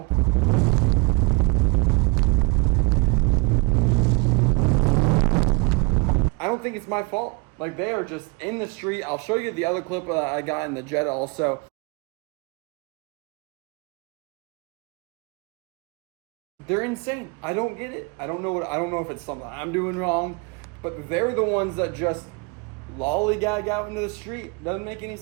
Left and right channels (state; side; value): quieter; left; 30.0 dB